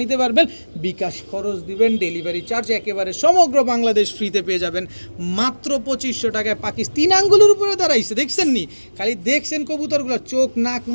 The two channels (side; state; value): both; inverted; correlation -1.00